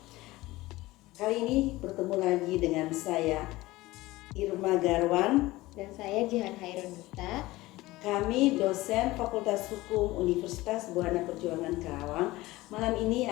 Kali ini bertemu lagi dengan saya Irma Garwan dan saya Jihan Hairun Duta. Kami dosen Fakultas Hukum Universitas Buana Perjuangan Karawang. Malam ini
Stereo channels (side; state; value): right; quieter; 18.9 dB